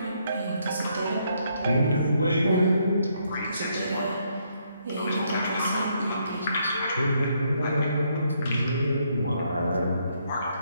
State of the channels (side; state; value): both; inverted; correlation -0.73